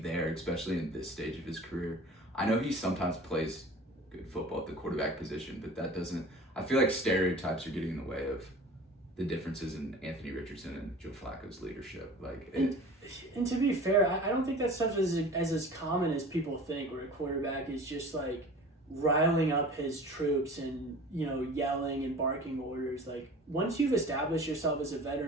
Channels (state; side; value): normal; both; correlation 0.41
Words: especially in this stage of his career. I know he sometimes plays good football at the quarterback position, but that doesn't, I feel like stereotypes are getting in the way of the differences in Anthony Richardson and Joe Flacco's leadership. Like, and to be fair, I don't think that stuff is as common as people think, where a quarterback is just like riling up his troops and, you know, yelling and barking orders. Like, once you've established yourself as a